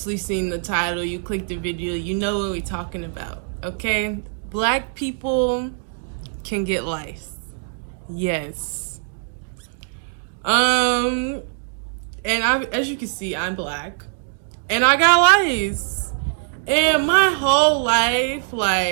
seen the title, you clicked the video, you know what we're talking about, okay? Black people can get lice. Yes. And as you can see, I'm black. And I got lice. And my whole life,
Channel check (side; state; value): left; silent; digital silence